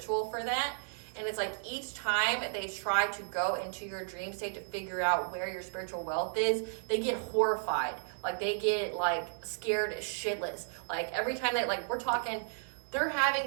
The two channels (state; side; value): silent; left; 55 dB below the other